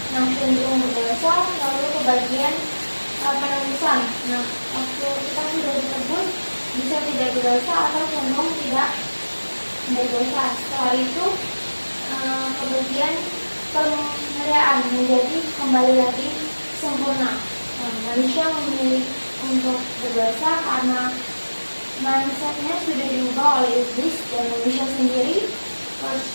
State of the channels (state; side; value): inverted; both; correlation -1.00